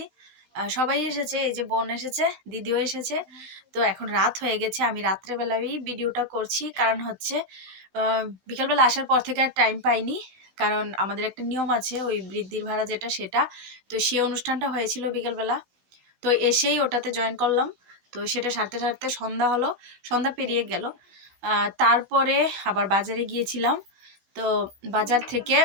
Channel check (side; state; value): left; late; 15 ms